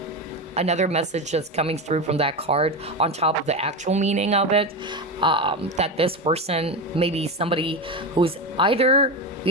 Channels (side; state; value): both; normal; correlation 0.17